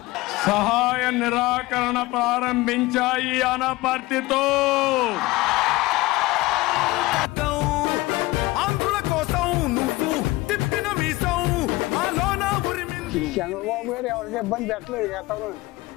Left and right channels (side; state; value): right; quieter; 20.2 dB